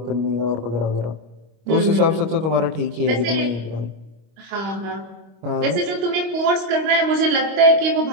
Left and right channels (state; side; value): late; left; 25 ms